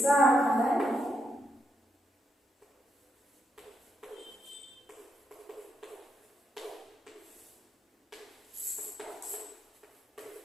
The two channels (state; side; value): normal; both; correlation 0.82